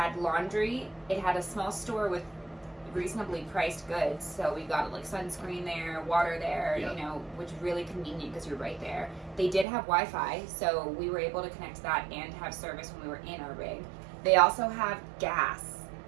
laundry. It had a small store with reasonably priced goods. So we got like sunscreen there, water there, which is really convenient because you're right there. They did have Wi-Fi, so we were able to connect to that and have service when we were in our rig. They also have gas,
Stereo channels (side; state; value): left; drops out; at 9.7 s